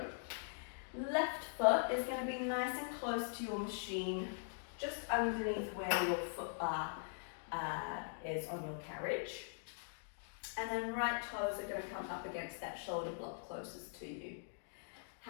Left foot is going to be nice and close to your machine, just underneath where your foot bar is on your carriage. And then right toes are going to come up against that shoulder block closest to you.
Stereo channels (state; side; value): silent; right; digital silence